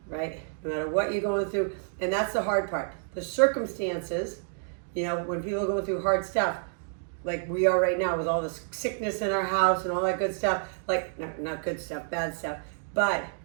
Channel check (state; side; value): silent; left; digital silence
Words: right? No matter what you're going through. And that's the hard part. The circumstances, when people are going through hard stuff, like we are right now with all this sickness in our house and all that good stuff, like not good stuff, bad stuff, but